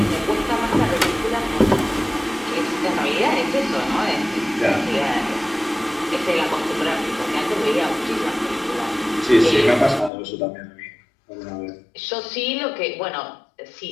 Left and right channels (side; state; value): right; drops out; at 10.1 s